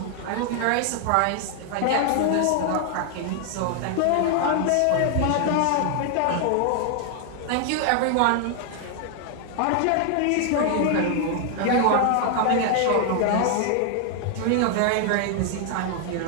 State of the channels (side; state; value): both; different; correlation 0.00